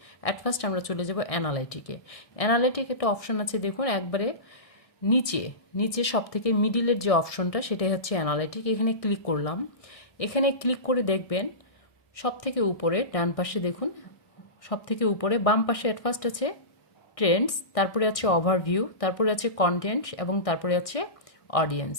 অ্যাট ফার্স্ট আমরা চলে যাব অ্যানালাইটিকে। অ্যানালাইটিক একটা অপশন আছে, দেখুন একবারে নিচে নিচে সব থেকে মিডিলের যে অপশনটা সেটাই হচ্ছে অ্যানালাইটিক। এখানে ক্লিক করলাম। এখানে ক্লিক করে দেখবেন সব থেকে উপরে ডান পাশে দেখুন, সব থেকে উপরে বাম পাশে অ্যাট ফার্স্ট আছে ট্রেন্ডস, তারপরে আছে ওভারভিউ, তারপরে আছে কন্টেন্ট এবং তারপরে আছে অডিয়েন্স।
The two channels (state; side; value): late; right; 1.6 ms